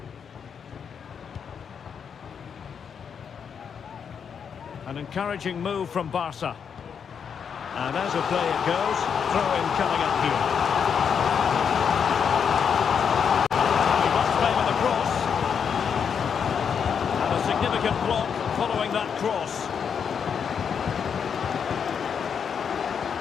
An encouraging move from Barca. And as a play it goes, throw-in coming up here. He must favour the cross. And a significant block following that cross.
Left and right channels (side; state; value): right; quieter; 7.1 dB